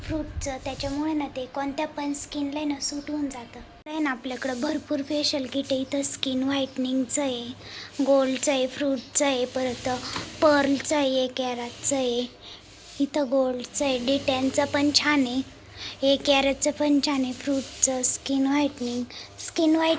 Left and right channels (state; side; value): identical; both; correlation 1.00